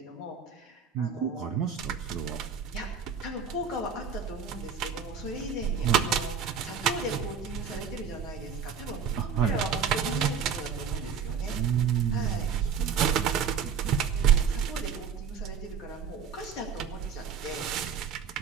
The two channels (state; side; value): quieter; left; 6.8 dB